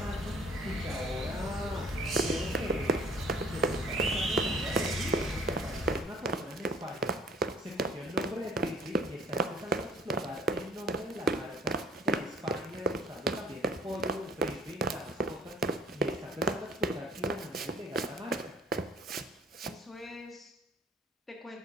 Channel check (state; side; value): normal; both; correlation 0.55